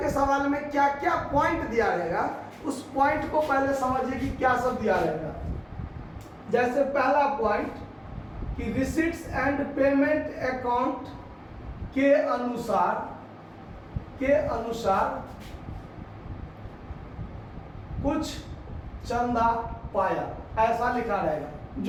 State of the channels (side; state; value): both; identical; correlation 1.00